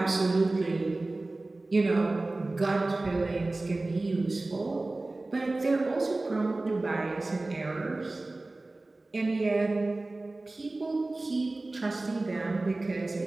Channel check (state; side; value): quieter; left; 3.0 dB